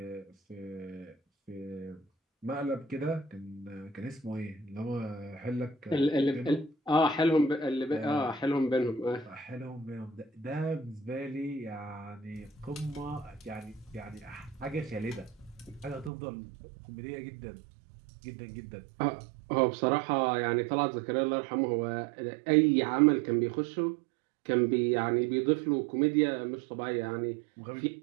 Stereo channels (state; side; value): drops out; left; at 16.1 s